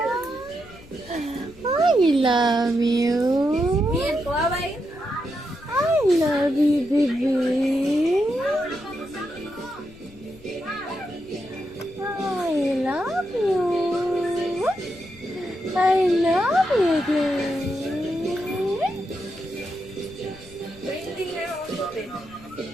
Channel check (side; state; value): left; noise; rumble, 22 dB below the sound